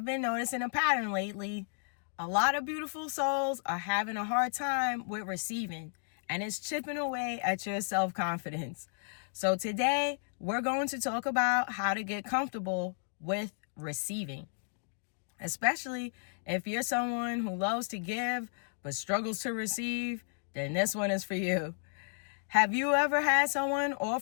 been noticing a pattern lately. A lot of beautiful souls are having a hard time with receiving, and it's chipping away at your self-confidence. So today, we're going to talk about how to get comfortable with receiving, especially if you're someone who loves to give but struggles to receive. Then this one is for you. Have you ever had someone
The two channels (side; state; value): right; silent; digital silence